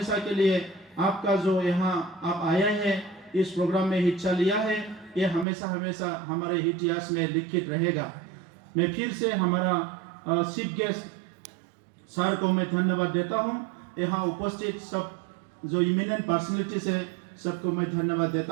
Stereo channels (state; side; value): drops out; left; at 5.5 s